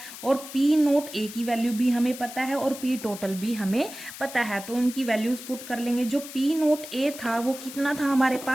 और पी नोट ए की वैल्यू भी हमें पता है और पी टोटल भी हमें पता है। तो उनकी वैल्यूज पुट कर लेंगे। जो पी नोट ए था वो कितना था हमारे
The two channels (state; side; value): noise; left; hiss, 13 dB below the sound